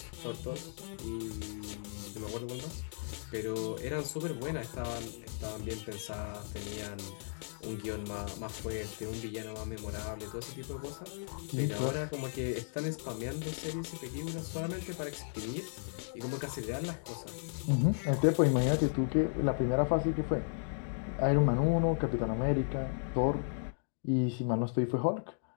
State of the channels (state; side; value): silent; right; digital silence